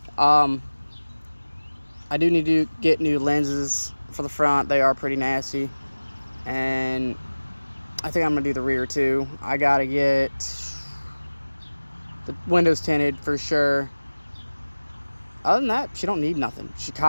I do need to get new lenses for the front. They are pretty nasty, and I think I'm gonna do the rear too. I gotta get the windows tinted for sure. Other than that, she don't need nothing. She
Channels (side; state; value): both; inverted; correlation -1.00